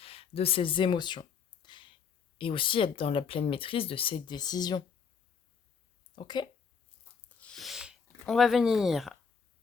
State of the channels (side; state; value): right; quieter; 6.2 dB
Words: de ses émotions, et aussi être dans la pleine maîtrise de ses décisions. Ok ? On va venir